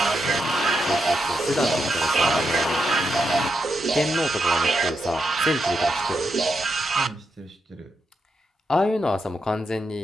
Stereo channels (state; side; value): normal; both; correlation 0.84